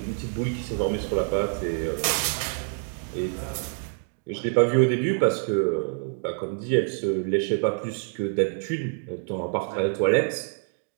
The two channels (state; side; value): silent; left; 61 dB below the other